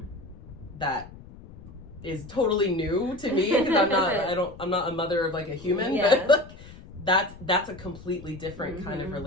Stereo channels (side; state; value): left; noise; rumble, 18 dB below the sound